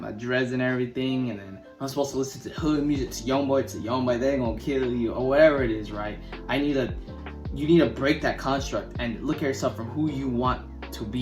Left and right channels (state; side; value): identical; both; correlation 1.00